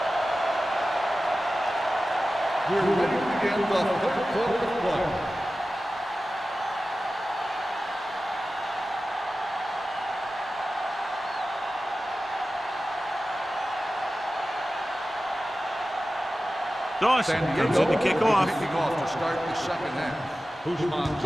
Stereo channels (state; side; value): normal; both; correlation 0.95